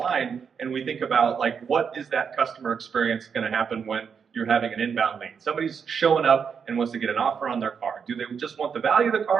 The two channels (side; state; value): left; quieter; 6.6 dB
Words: and we think about, like, what is that customer experience gonna happen when you're having an inbound lead? Somebody's showing up and wants to get an offer on their car. Do they just want the value of the